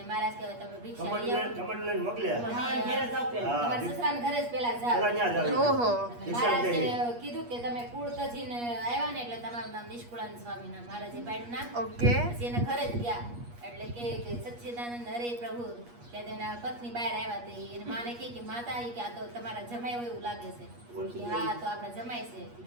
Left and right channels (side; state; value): left; late; 8.4 ms